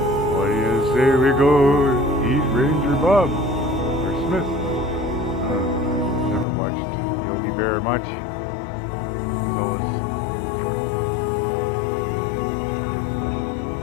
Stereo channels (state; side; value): drops out; right; at 6.5 s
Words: What do you say we go eat Ranger Bob or Smith? Never watched Yogi Bear much.